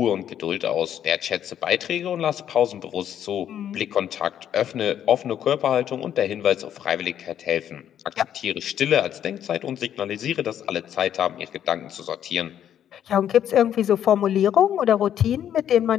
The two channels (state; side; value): quieter; right; 10.0 dB